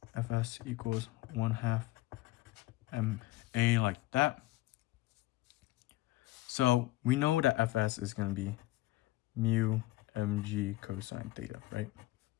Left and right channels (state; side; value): quieter; right; 18.0 dB